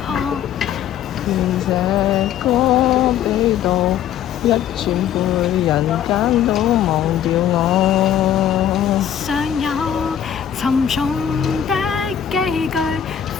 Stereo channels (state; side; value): quieter; right; 9.9 dB